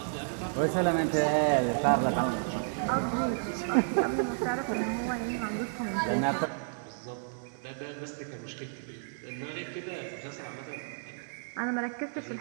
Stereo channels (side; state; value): left; silent; 57 dB below the other